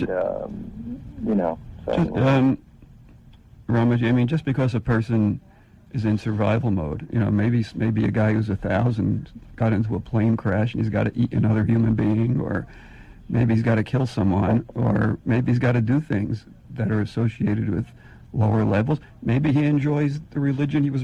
Ramaji, I mean, just because a person is in survival mode, maybe a guy who's 1,000 got into a plane crash and he's got to eat another human being, or maybe he's got to kill someone, or maybe he's got to do things that are associated with lower levels. Maybe he enjoys the religion he was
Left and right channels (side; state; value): both; identical; correlation 1.00